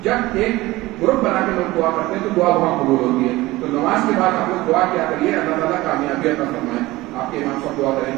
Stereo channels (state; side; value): quieter; left; 19.1 dB